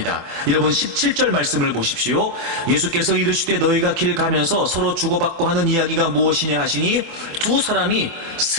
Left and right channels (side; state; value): left; late; 24 ms